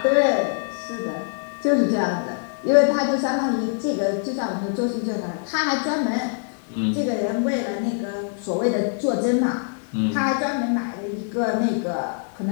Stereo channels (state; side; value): silent; right; 63 dB below the other